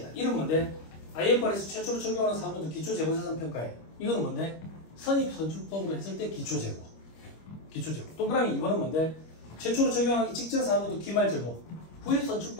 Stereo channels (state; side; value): late; right; 25 ms